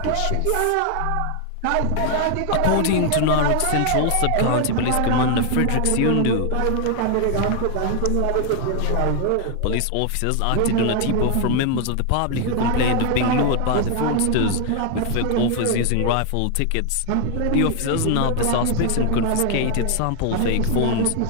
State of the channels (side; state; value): both; different; correlation 0.01